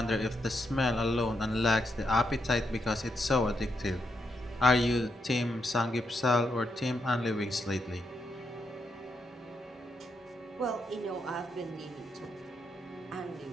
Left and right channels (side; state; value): both; normal; correlation 0.81